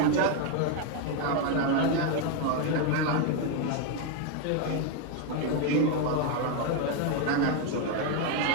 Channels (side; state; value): both; different; correlation 0.01